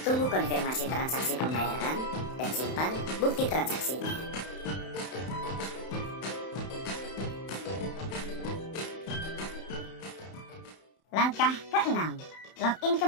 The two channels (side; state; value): right; late; 31 ms